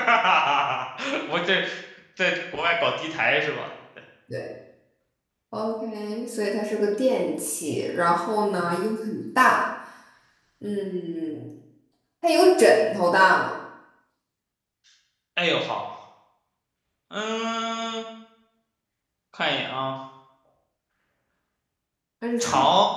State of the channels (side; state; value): both; identical; correlation 1.00